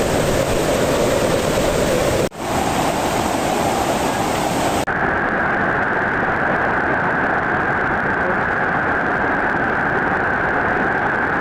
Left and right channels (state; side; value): identical; both; correlation 1.00